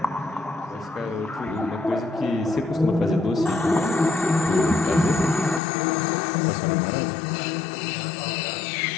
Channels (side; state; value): right; drops out; at 5.6 s